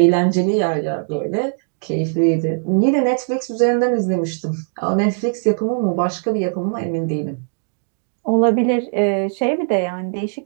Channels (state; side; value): silent; left; digital silence